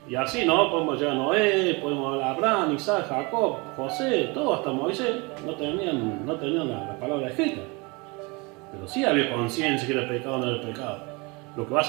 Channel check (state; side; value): quieter; left; 27.7 dB